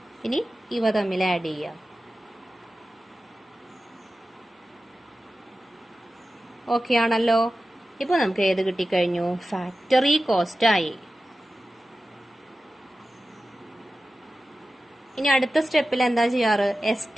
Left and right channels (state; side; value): normal; both; correlation 0.94